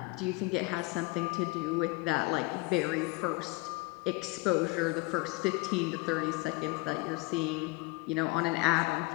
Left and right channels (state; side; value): quieter; right; 24.9 dB